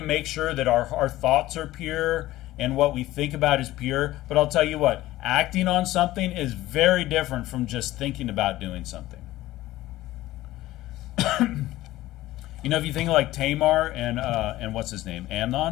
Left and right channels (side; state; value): right; quieter; 16.2 dB